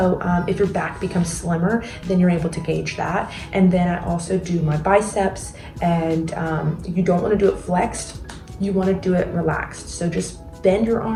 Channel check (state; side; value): identical; both; correlation 1.00